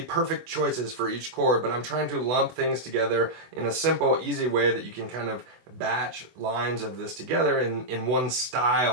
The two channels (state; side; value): late; left; 24 ms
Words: perfect choices for each chord, but I'm trying to lump things together in a simple, easy way that you can kind of batch lines of this together in one